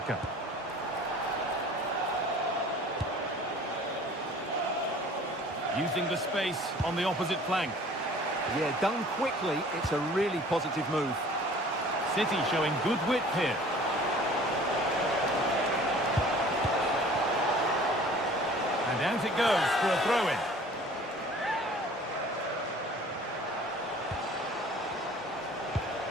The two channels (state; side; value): normal; both; correlation 0.49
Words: Using the space on the opposite flank. Yeah, done quickly, it's a really positive move. City showing good wit here. And out it goes for a throw-in.